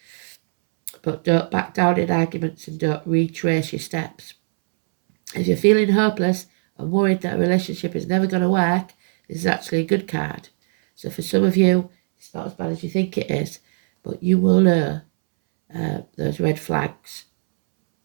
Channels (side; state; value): left; silent; 65 dB below the other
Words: But don't back down in arguments and don't retrace your steps. If you're feeling hopeless and worried that a relationship is never going to work, this is actually a good card. So for some of you, it's not as bad as you think it is, but you will know those red flags.